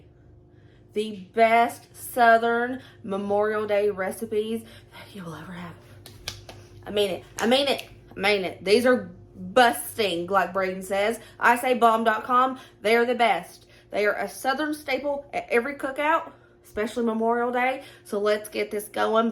The best Southern Memorial Day recipes that you will ever have. I mean it. These are busting, like Braden says. I say bomb.com. They are the best. They are a Southern staple at every cookout, especially Memorial Day. So let's get this going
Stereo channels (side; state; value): both; identical; correlation 1.00